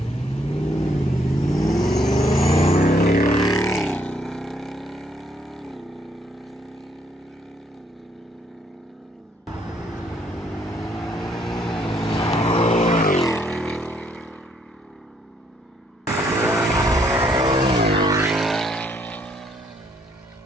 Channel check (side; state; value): both; normal; correlation 0.69